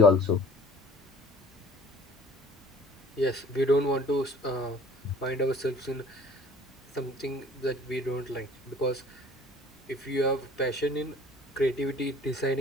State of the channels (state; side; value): normal; both; correlation 0.50